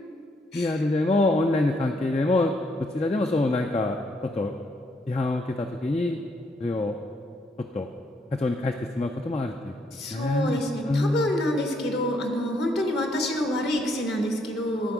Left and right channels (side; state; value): both; normal; correlation 0.72